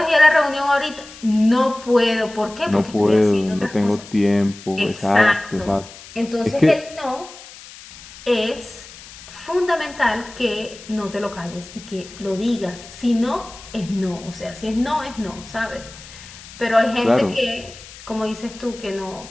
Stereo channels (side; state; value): left; noise; hiss, 18 dB below the sound